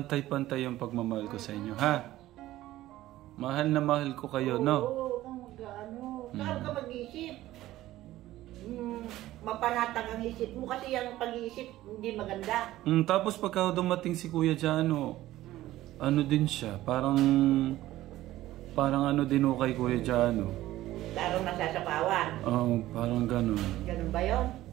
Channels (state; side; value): quieter; left; 15.4 dB